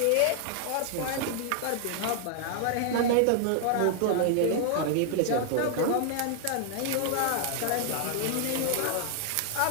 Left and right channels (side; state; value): both; different; correlation -0.01